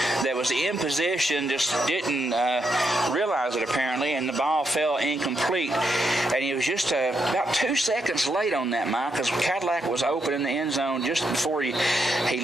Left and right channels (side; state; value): both; normal; correlation 0.80